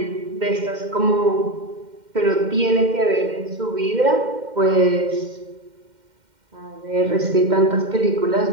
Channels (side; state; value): left; late; 2.1 ms